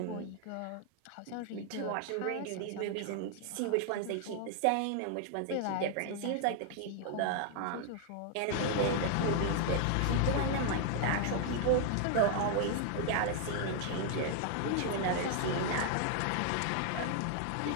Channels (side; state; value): both; different; correlation 0.00